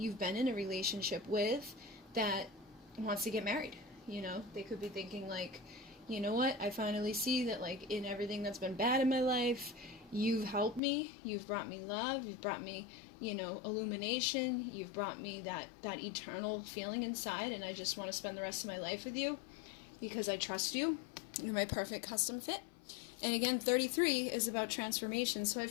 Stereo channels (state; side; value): drops out; right; at 10.8 s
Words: been in a relationship with that wants to get married. They could be thinking like, you know what, I finally see that like in everything that's been bad in my life, you've helped me, you've brought me love, you've brought me, illumination, you've brought me that eternal feeling inside, and I just want to spend the rest of my life with you because I trust you. You're my perfect custom fit. And again, 33 is about transformation. So I